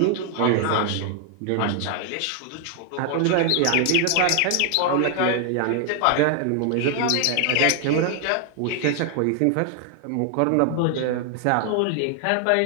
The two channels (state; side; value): different; both; correlation 0.00